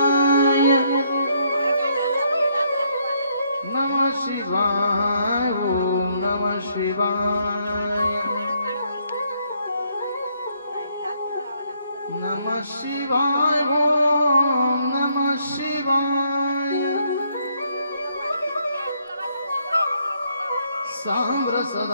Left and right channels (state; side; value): inverted; both; correlation -0.71